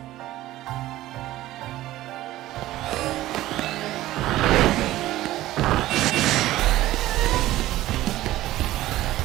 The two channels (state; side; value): quieter; left; 15.5 dB